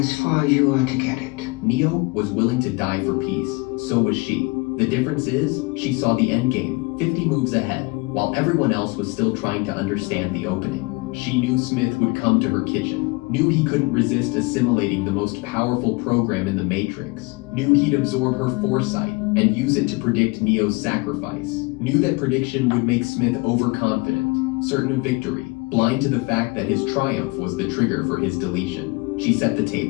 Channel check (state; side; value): quieter; right; 26.9 dB